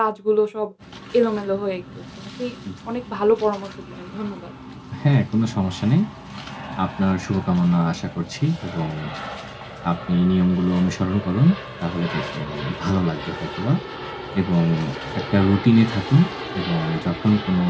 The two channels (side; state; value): both; identical; correlation 1.00